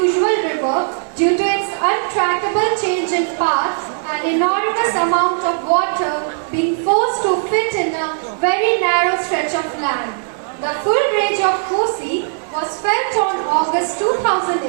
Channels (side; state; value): left; silent; digital silence